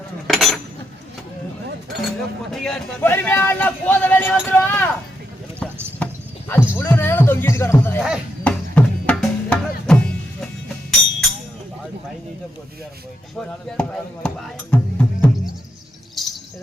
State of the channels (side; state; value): both; normal; correlation 0.81